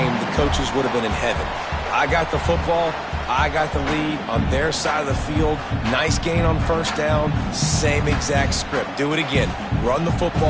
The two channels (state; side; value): identical; both; correlation 1.00